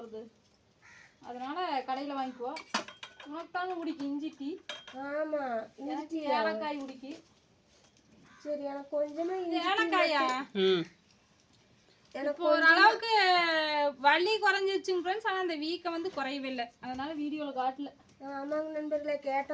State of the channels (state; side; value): identical; both; correlation 1.00